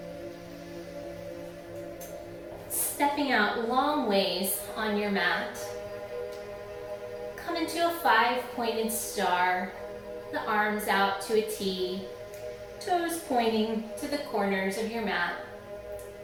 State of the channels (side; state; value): both; identical; correlation 1.00